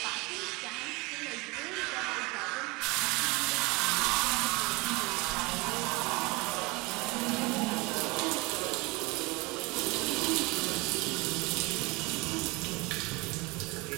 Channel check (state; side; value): quieter; left; 25.1 dB